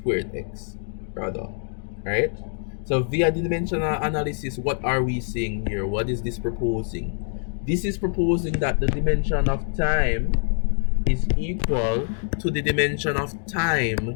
x, rather, right? So via the dimensional analysis, what are we saying here? What is this proposing? This is proposing that the dimension of time is equal to the dimension of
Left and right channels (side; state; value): right; silent; 62 dB below the other